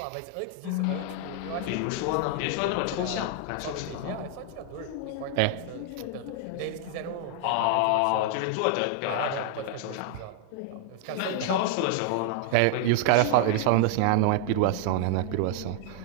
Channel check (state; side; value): different; both; correlation 0.00